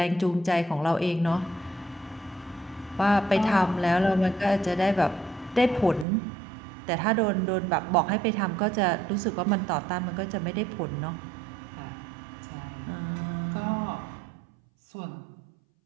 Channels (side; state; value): left; drops out; at 6.1 s